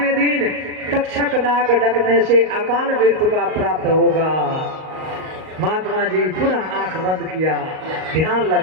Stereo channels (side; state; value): left; late; 38 ms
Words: दिन तक्षक नाग डसने से अकाल मृत्यु का प्राप्त होगा। महात्मा जी पुनः आंख बंद किया, ध्यान